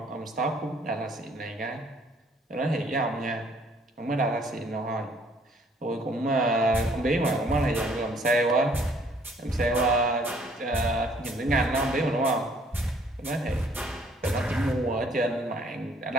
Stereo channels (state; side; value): normal; both; correlation 0.61